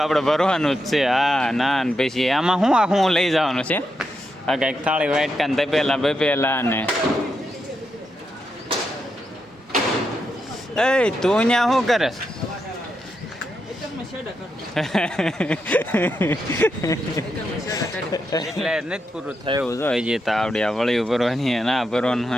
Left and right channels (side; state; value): both; normal; correlation 0.84